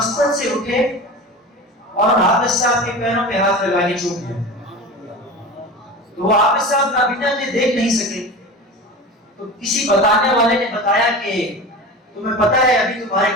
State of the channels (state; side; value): normal; both; correlation 0.31